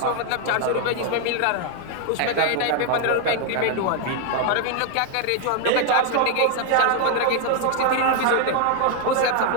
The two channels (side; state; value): both; different; correlation 0.00